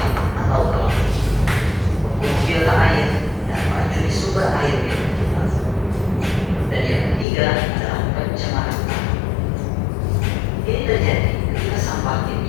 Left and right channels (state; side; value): drops out; right; at 7.2 s